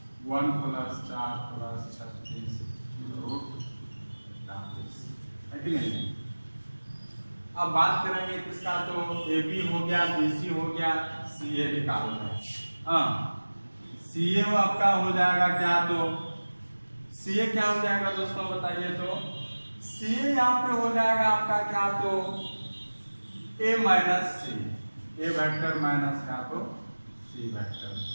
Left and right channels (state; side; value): inverted; both; correlation -1.00